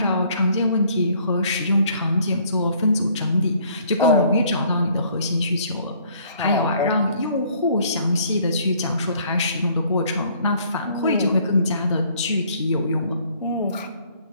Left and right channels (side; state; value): both; inverted; correlation -0.61